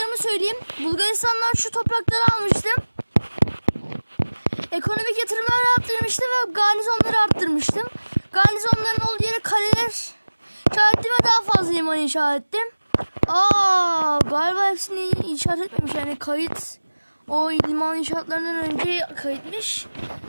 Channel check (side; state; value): both; inverted; correlation -1.00